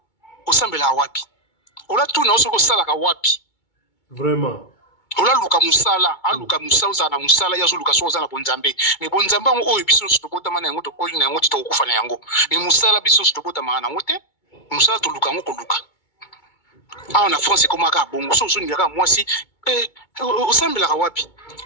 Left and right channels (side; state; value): right; late; 2.2 ms